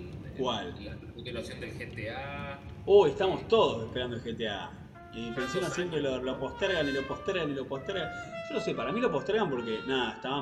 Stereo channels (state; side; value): identical; both; correlation 1.00